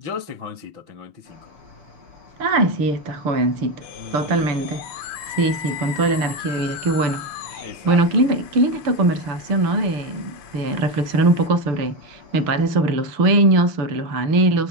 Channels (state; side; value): late; left; 6.8 ms